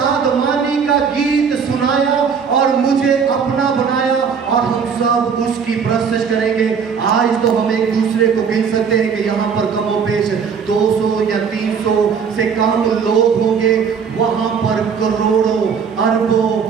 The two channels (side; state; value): left; quieter; 6.4 dB